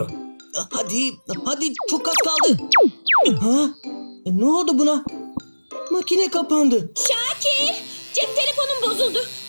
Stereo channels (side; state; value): both; inverted; correlation -1.00